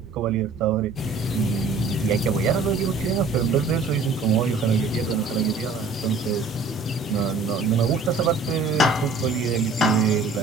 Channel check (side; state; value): left; quieter; 4.0 dB